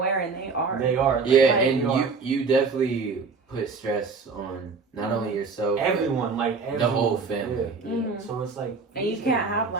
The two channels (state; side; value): quieter; left; 4.7 dB